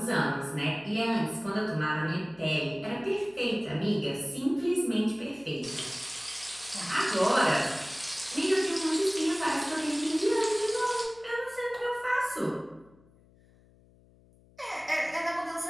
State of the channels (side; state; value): left; noise; hum, 28 dB below the sound